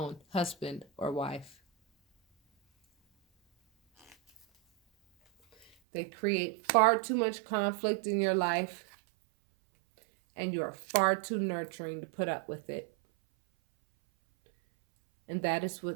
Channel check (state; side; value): drops out; left; at 5.7 s